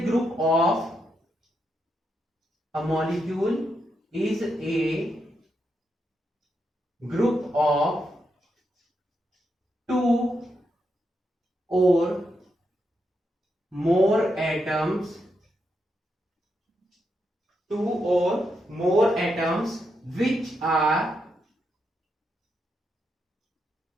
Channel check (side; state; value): both; normal; correlation 0.82